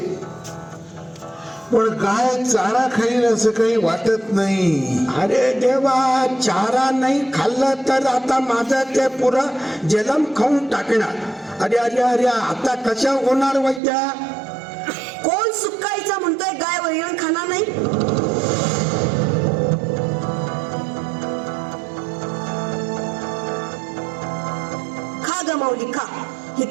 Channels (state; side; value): drops out; left; at 13.8 s